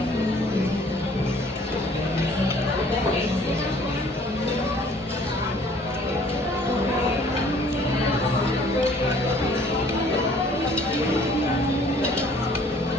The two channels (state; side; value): normal; both; correlation 0.56